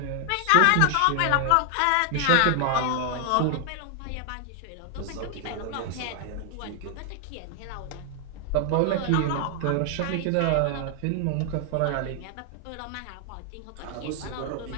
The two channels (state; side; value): different; both; correlation 0.00